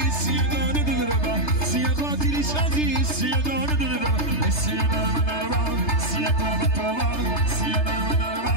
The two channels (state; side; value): late; right; 3.3 ms